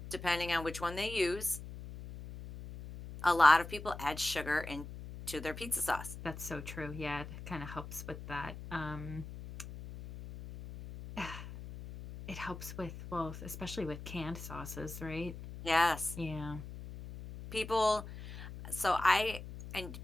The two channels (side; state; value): left; noise; hum, 11 dB below the sound